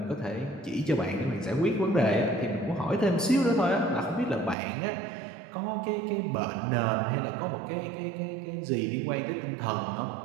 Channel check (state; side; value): drops out; left; at 4.5 s